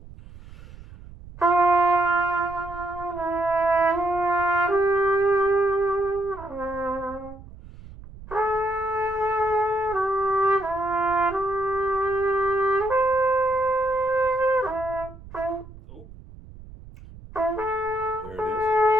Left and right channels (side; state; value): right; noise; rumble, 18 dB below the sound